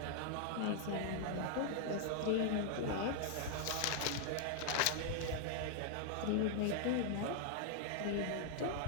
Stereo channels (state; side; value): different; both; correlation -0.01